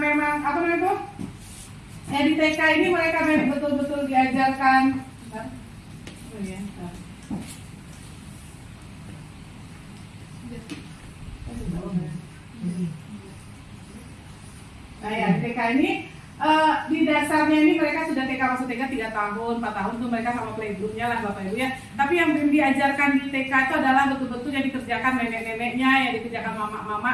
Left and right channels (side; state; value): both; identical; correlation 1.00